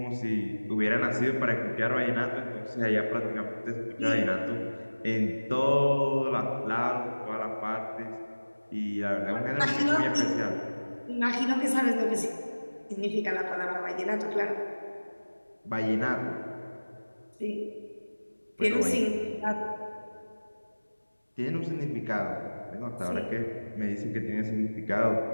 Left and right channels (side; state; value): both; inverted; correlation -1.00